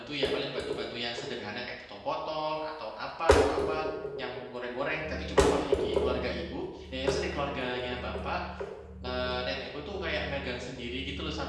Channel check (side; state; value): both; identical; correlation 1.00